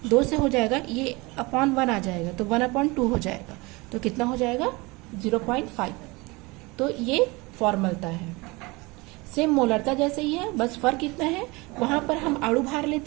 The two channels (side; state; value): left; quieter; 24.7 dB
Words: 2 से हो जाएगा, ये अपॉन 1 आ जाएगा, तो 1/2 हो जाएगा, तो कितना हो जाएगा? 0.5। तो ये फॉर्मलता है, सेम मोलरता जैसे ही है, बस फर्क इतना है, वहां पर हम अणु भार